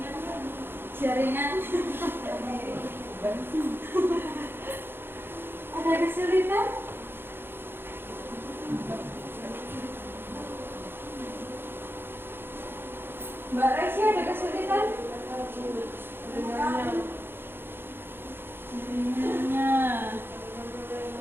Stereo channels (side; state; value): left; late; 0.10 ms